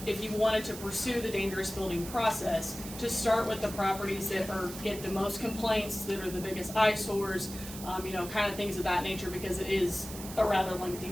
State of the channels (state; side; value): noise; right; hiss, 12 dB below the sound